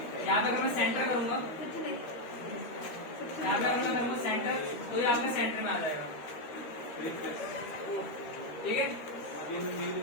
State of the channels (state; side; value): late; right; 13 ms